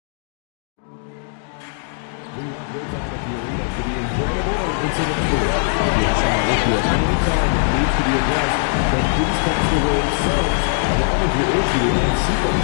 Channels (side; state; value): right; silent; digital silence